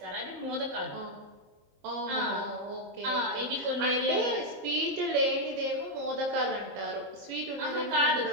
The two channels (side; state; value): left; late; 23 ms